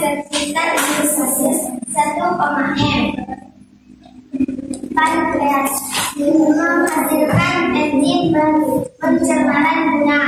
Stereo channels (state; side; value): identical; both; correlation 1.00